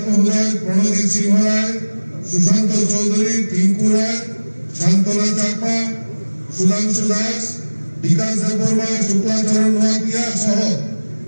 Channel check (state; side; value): inverted; both; correlation -1.00